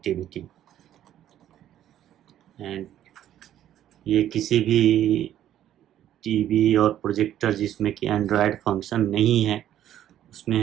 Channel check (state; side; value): quieter; left; 11.6 dB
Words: एंड ये किसी भी टीवी और प्रोजेक्टर जिसमें कि एंड्रॉयड फंक्शन नहीं है, उसमें